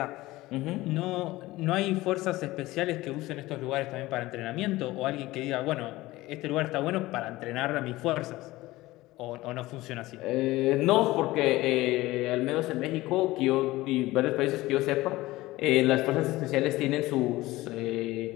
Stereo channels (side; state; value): right; quieter; 18.5 dB